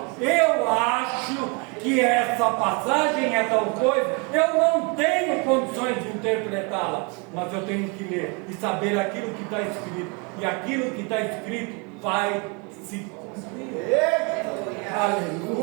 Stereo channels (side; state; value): left; quieter; 32.2 dB